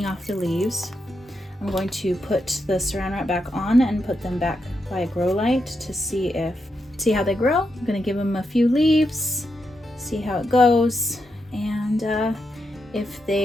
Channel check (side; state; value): both; normal; correlation 0.84